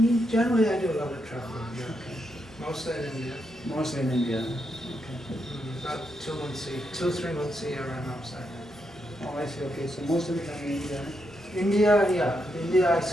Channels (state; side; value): normal; both; correlation 0.82